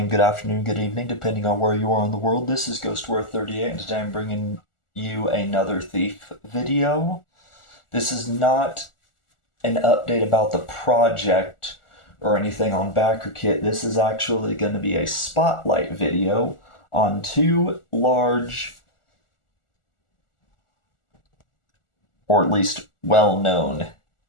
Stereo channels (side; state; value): right; late; 1.4 ms